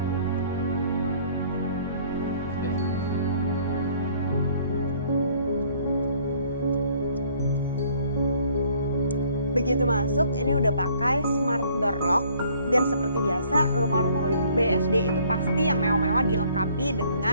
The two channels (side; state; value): both; inverted; correlation -0.60